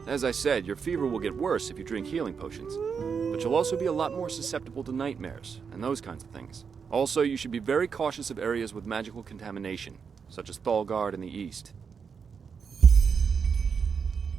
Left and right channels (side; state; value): left; quieter; 6.2 dB